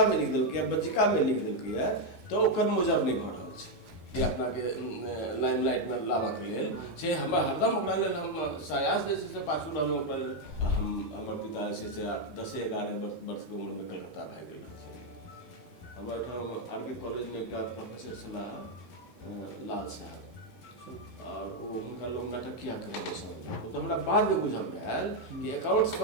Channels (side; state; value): right; late; 11 ms